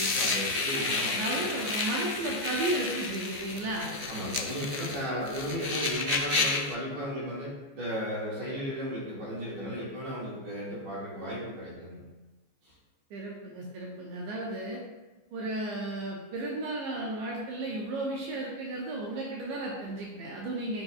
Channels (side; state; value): left; late; 14 ms